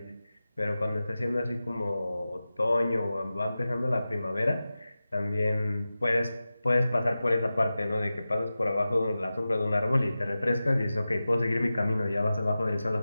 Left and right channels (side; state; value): both; inverted; correlation -0.94